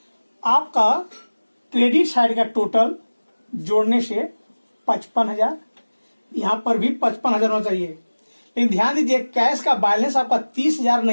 आपका क्रेडिट साइड का टोटल जोड़ने से 55,000, यहां पर भी 55,000 होना चाहिए, लेकिन ध्यान दीजिए कैश का बैलेंस आपका 30,000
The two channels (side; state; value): both; inverted; correlation -1.00